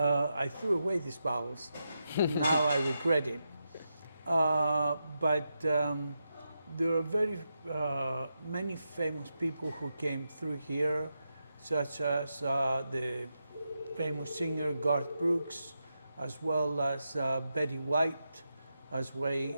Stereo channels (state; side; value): inverted; both; correlation -0.86